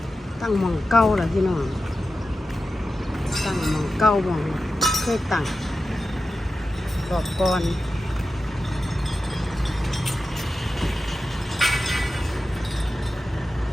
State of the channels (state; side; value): normal; both; correlation 0.92